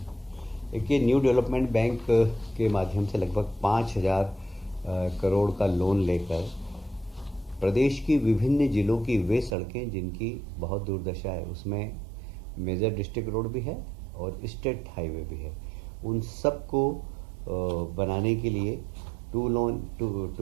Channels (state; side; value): drops out; left; at 9.6 s